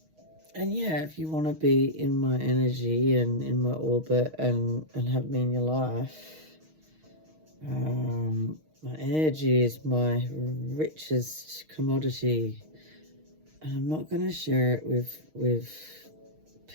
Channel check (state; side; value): late; left; 6.4 ms